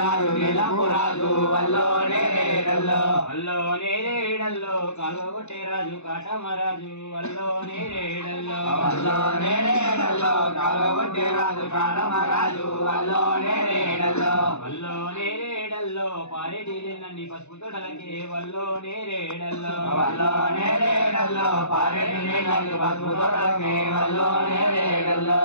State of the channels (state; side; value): late; right; 0.82 ms